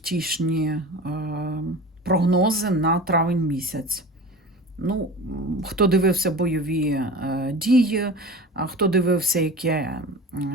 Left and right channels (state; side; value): normal; both; correlation 0.34